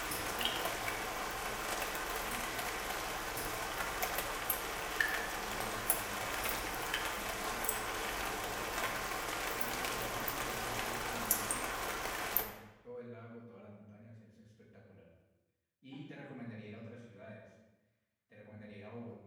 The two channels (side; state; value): both; identical; correlation 1.00